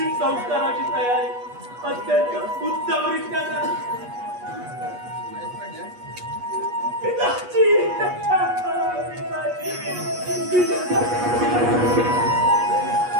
संस्काराची तयारी अत्यंत उत्तमरित्या झाली. पिताजी,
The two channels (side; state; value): left; late; 8.3 ms